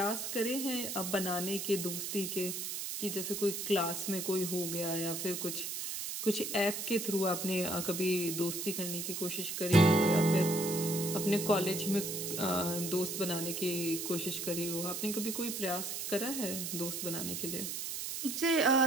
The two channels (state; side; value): noise; right; hiss, 4 dB below the sound